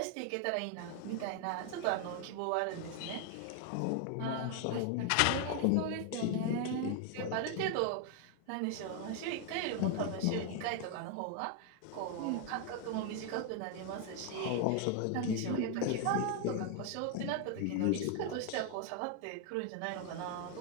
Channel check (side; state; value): both; different; correlation 0.00